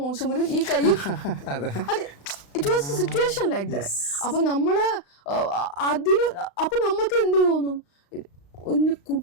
മോശമലും ഈ കൈയും it was situation like that. അപ്പൊ നമ്മള് അപ്പൊ നമുക്ക് എന്ത് തോന്നും,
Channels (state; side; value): late; right; 35 ms